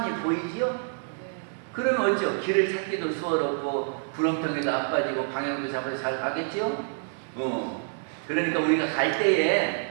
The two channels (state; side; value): silent; left; digital silence